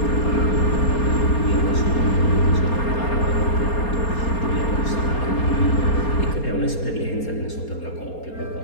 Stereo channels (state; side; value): late; right; 4.3 ms